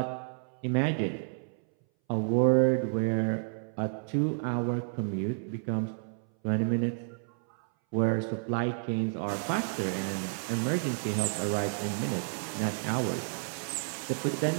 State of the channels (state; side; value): silent; left; 57 dB below the other